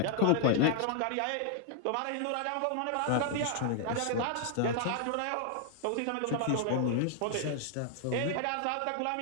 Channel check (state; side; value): different; both; correlation 0.00